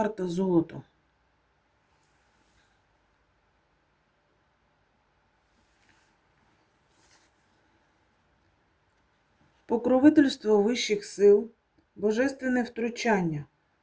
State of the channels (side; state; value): both; identical; correlation 1.00